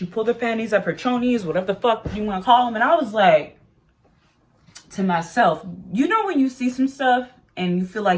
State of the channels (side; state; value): both; identical; correlation 1.00